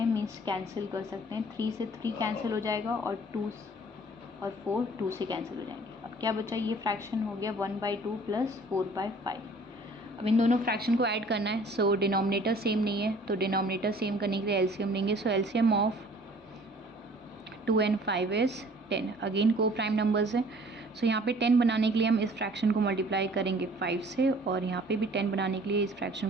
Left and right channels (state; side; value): normal; both; correlation 0.53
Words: मीन्स कैंसिल कर सकते हैं। 3 से 3 कैंसिल हो जाएगा और 2 और 4 2 से कैंसिल हो जाएंगे। अब क्या बचा, ये फ्रैक्शन हो गया 1/2 प्लस 4/5। अब इन दोनों फ्रैक्शन को ऐड करना है, सो डिनोमिनेटर सेम नहीं है, तो डिनोमिनेटर सेम करने के लिए एलसीएम लेंगे। So LCM of 2 and 5 is 10। Again coprime numbers है, सो यहाँ पे 10 बनाने के लिए हम इस फ्रैक्शन को मल्टीप्लाई करेंगे 5 से, और यहाँ पे भी 10 बनाने के लिए इस फ्रैक्शन